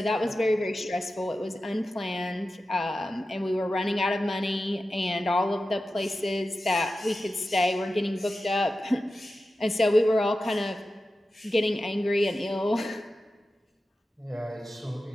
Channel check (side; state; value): both; normal; correlation 0.93